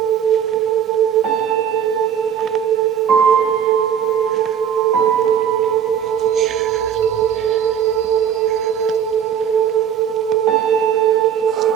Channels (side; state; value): left; quieter; 8.6 dB